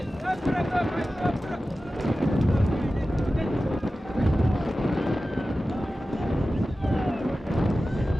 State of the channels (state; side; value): normal; both; correlation 0.95